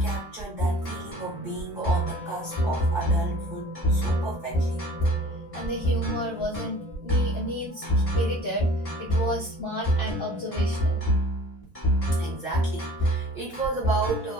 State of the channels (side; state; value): both; normal; correlation 0.47